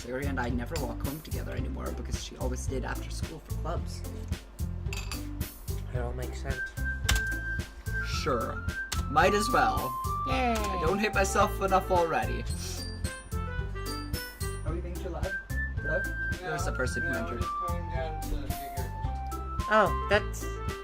Yuri and I never walk home together anymore because she always stayed after school for clubs. It all makes sense. Sure. Might as well. Yay! I don't hate myself enough already. Are we being too loud? Hello? There's a person who entered. Oh,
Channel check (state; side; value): identical; both; correlation 1.00